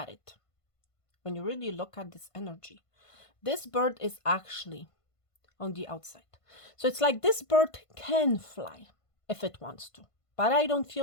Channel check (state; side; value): late; right; 1.5 ms